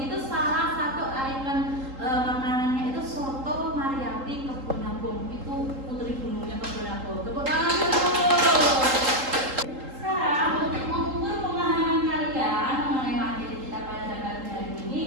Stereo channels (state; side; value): late; left; 3.8 ms